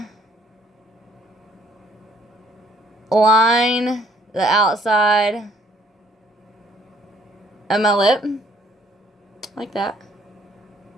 of line the outside of my lip like that.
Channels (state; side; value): normal; both; correlation 0.62